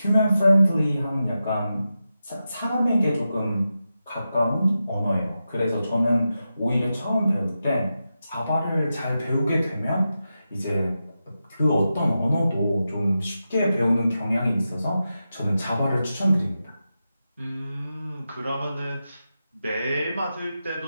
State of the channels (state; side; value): inverted; both; correlation -0.90